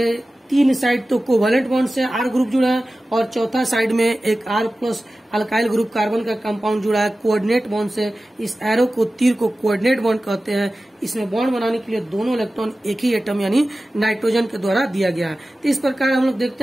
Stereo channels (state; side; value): normal; both; correlation 0.95